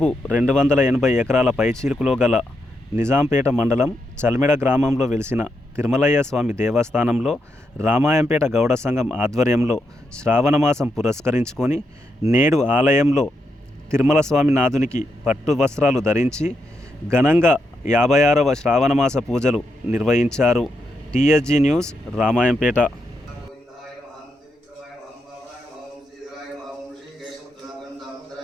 280 ఎకరాల పైచీలుకులో గల నిజాంపేట మండలం చల్మెడ గ్రామంలో వెలిసిన తిరుమలయ్య స్వామి దేవస్థానంలో రామాయంపేట గౌడ సంఘం ఆధ్వర్యంలో శ్రావణమాసం పురస్కరించుకొని నేడు ఆలయంలో తిరుమల స్వామి నాథునికి పట్టు వస్త్రాలు ధరించి ఘనంగా 56వ శ్రావణమాస పూజలు నిర్వహించారు. TSG news, Ramayampet.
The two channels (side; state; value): both; normal; correlation 0.82